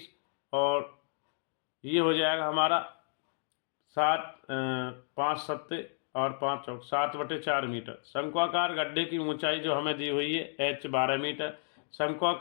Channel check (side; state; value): right; silent; digital silence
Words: और ये हो जाएगा हमारा 5 सत्ते और 5 चौक 7/4 मीटर। शंक्वाकार गड्ढे की ऊंचाई जो हमें दी हुई है h 12 मीटर।